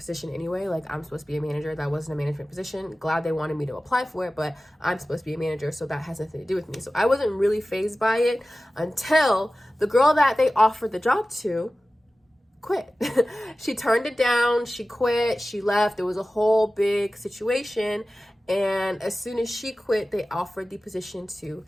anyway. Like, I'm supposed to be a manager. That wasn't a management position. Glad they wanted me to apply for it, but I'm supposed to be a manager, so that has nothing to do with me. So I wasn't really fazed by it until the girl that they offered the job to quit. She turned it down. She quit. She left. There was a whole big situation. And as soon as she quit, they offered the position to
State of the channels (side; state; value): both; normal; correlation 0.96